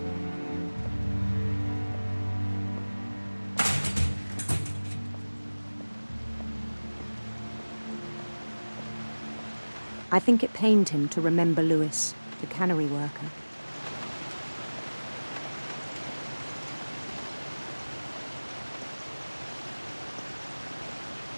I think it pained him to remember Lewis, the cannery worker.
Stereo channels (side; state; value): both; inverted; correlation -1.00